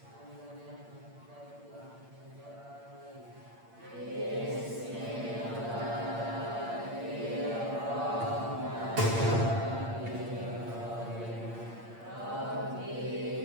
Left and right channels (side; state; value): left; late; 8.7 ms